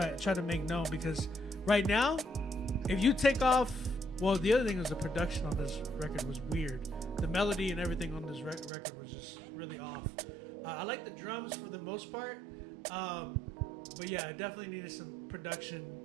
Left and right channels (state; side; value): drops out; left; at 8.7 s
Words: make known, because right now, if you take off, well, the other thing was the production on this record was weird. The melody and everything on this record was just really off. I like the drums for the most part, but yeah, I definitely needed some production,